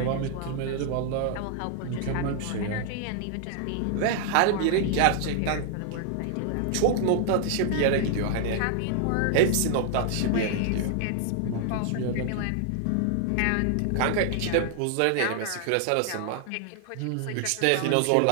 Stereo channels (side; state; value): both; different; correlation 0.00